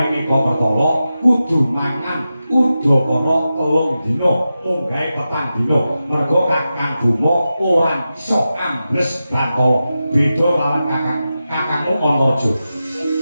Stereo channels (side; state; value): both; inverted; correlation -0.92